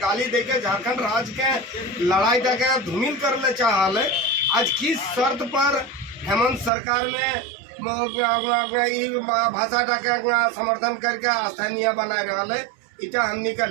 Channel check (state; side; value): drops out; left; at 6.7 s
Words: दे के झारखंड राज्य के लड़ाई के धूमिल कर ले चाहल। आज किस शर्त पर हेमंत सरकार में भाषा का समर्थन करके स्थानीय बनाए रहा है। इटा हमनी का